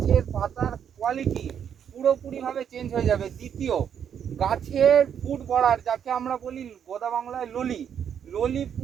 পাতার কোয়ালিটি পুরোপুরিভাবে চেঞ্জ হয়ে যাবে। দ্বিতীয়, গাছের ফুট বড়ার, যাকে আমরা বলি গোদা বাংলায় ললি, ললি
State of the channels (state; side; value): quieter; left; 8.4 dB